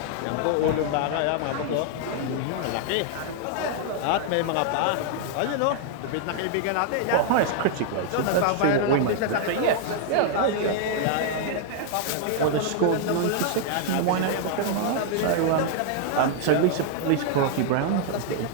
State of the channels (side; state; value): both; different; correlation 0.00